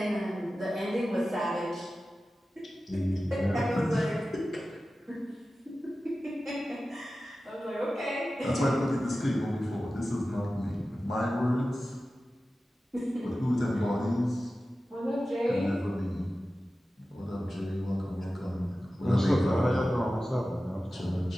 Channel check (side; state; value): both; normal; correlation 0.95